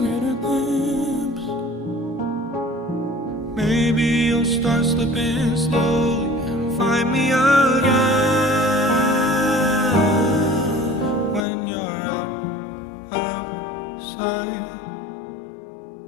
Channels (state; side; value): drops out; right; at 11.5 s